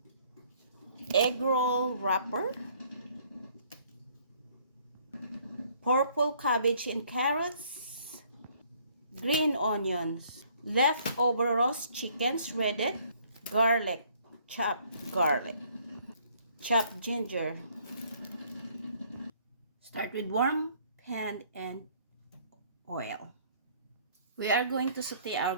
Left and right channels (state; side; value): inverted; both; correlation -0.62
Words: egg roll wrapper, purple cabbage and carrots, green onions, leftover roast chicken shredded, garlic, chopped ginger. Start with warm pan and oil. We are going to saute our